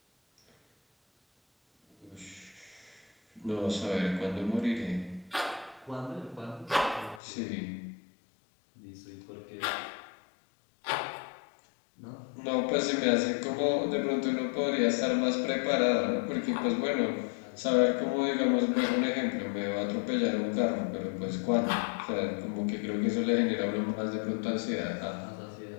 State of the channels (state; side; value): drops out; right; at 7.2 s